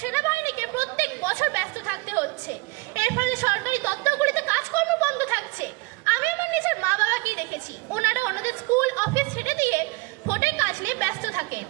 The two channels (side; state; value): left; quieter; 25.4 dB